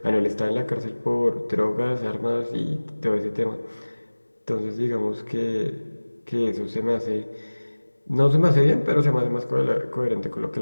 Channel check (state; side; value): inverted; both; correlation -1.00